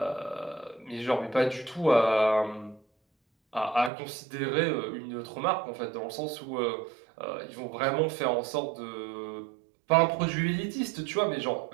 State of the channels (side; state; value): left; drops out; at 3.9 s